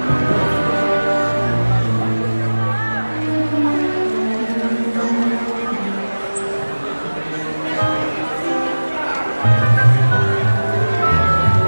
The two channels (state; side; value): inverted; both; correlation -1.00